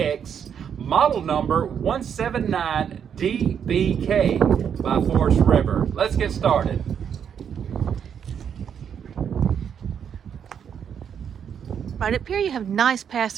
model number 179DBK by Forest River. Let's get started. Right up here you have nice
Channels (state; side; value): quieter; left; 8.0 dB